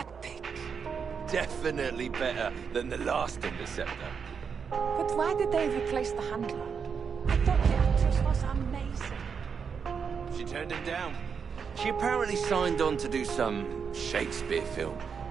Definitely better than the last Interceptor. But why did they replace the handler? I thought the actress was amazing. She turned him down. She apparently signed on to do some Shakespeare film.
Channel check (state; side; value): quieter; left; 6.3 dB